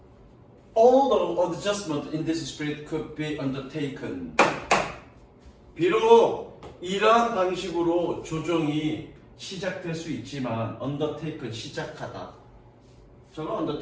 Although adjustment in this spirit could be undertaken. 비록 이러한 방식으로 조정이 시작될 수 있지만 undertaken 시작하다. 저거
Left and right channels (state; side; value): identical; both; correlation 1.00